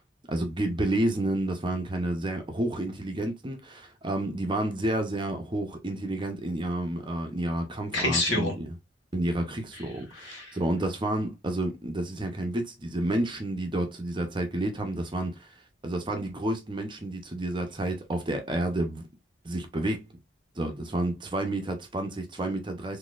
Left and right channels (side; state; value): both; normal; correlation 0.69